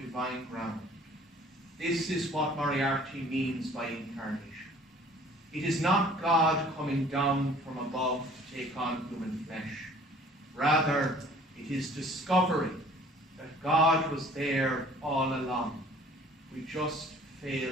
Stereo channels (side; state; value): both; normal; correlation 0.53